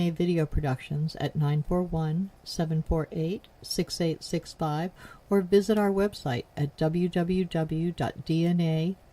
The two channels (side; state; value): both; identical; correlation 1.00